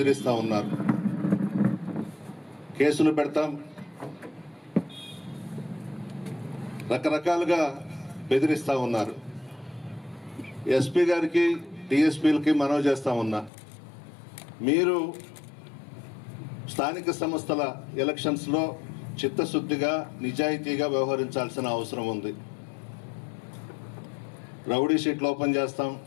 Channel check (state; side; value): drops out; right; at 13.5 s